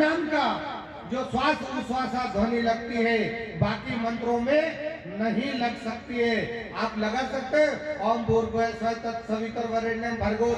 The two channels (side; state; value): both; identical; correlation 1.00